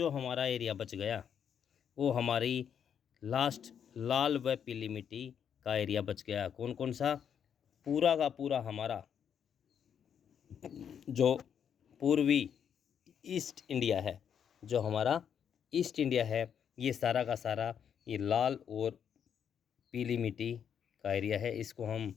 हमारा एरिया बच गया वो हमारी लास्ट लाल व पीली मिट्टी का एरिया बच गया। कौन कौन सा? पूरा का पूरा हमारा जो पूर्वी ईस्ट इंडिया है, जो हमारा ईस्ट इंडिया है, ये सारा का सारा ये लाल और पीली मिट्टी का एरिया है। इसको हम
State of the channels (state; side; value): quieter; right; 8.2 dB